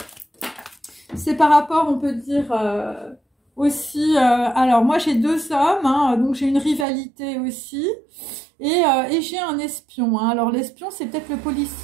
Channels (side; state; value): left; drops out; at 6.9 s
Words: c'est par rapport, on peut dire, aussi... alors, moi, j'ai 2 hommes, hein, donc j'ai une rivalité aussi. Et j'ai un espion. Hein. Alors, l'espion, c'est peut-être le